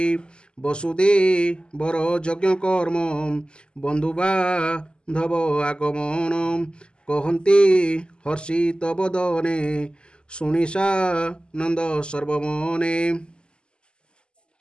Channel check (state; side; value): late; right; 0.049 ms